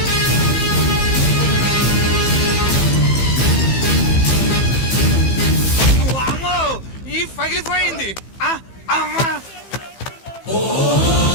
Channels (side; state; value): right; late; 15 ms